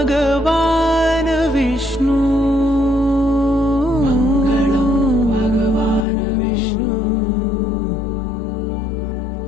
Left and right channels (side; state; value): right; drops out; at 6.1 s